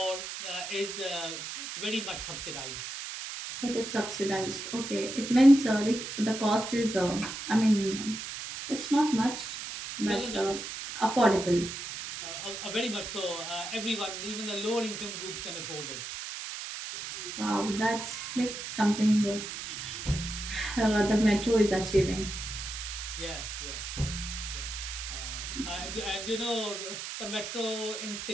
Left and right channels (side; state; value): right; noise; hiss, 7 dB below the sound